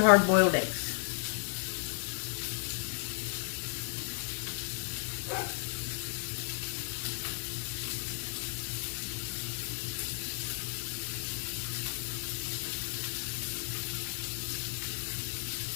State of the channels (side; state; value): right; silent; 55 dB below the other